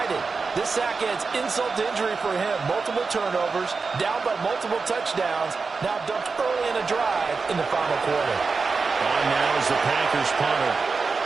This sack adds insult to injury for him. Multiple turnovers, down by multiple touchdowns. Now dumped early in a drive in the final quarter. On now is the Packers punter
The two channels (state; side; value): quieter; left; 4.6 dB